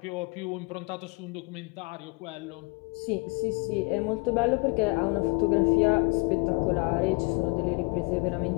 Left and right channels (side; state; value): right; quieter; 30.7 dB